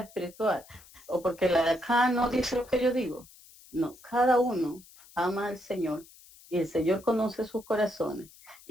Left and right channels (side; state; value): left; noise; hiss, 23 dB below the sound